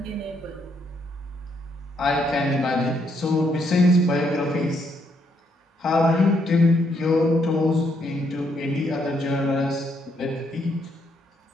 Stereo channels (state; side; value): normal; both; correlation 0.74